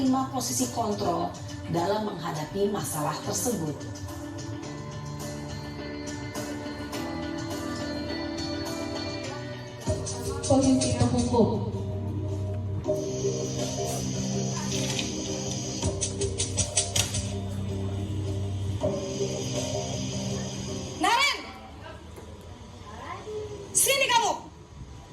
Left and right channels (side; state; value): both; identical; correlation 1.00